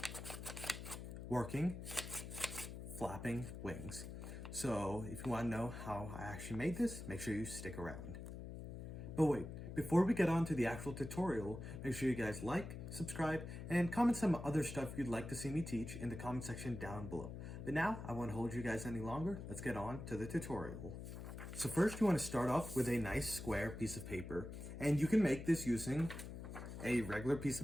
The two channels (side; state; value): left; noise; hum, 8 dB below the sound